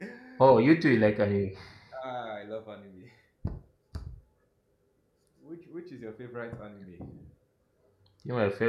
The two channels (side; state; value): both; identical; correlation 1.00